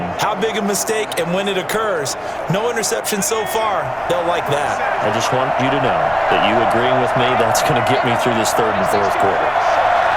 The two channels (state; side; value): identical; both; correlation 1.00